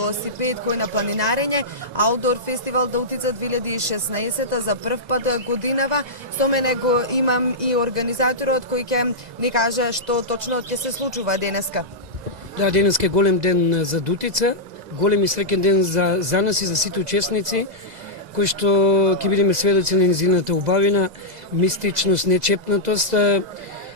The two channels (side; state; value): left; late; 2.0 ms